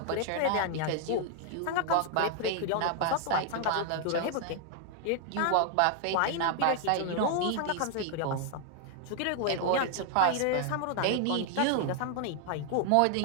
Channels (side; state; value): both; different; correlation 0.00